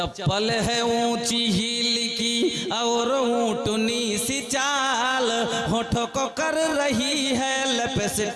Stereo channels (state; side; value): identical; both; correlation 1.00